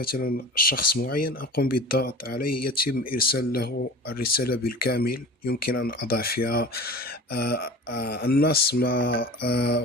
شخص معين، أقوم بالضغط عليه، يتم إرسال له الرسالة بالكامل. يمكن أن أضع فيها النص مع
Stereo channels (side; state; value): both; normal; correlation 0.37